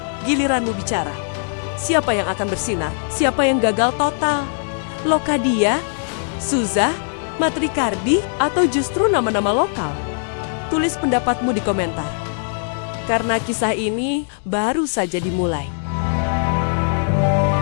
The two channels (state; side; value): silent; right; digital silence